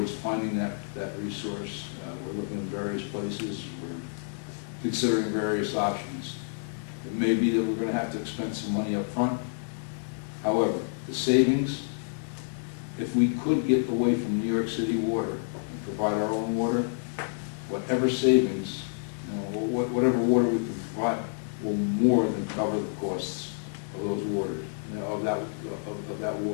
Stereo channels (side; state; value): right; silent; 59 dB below the other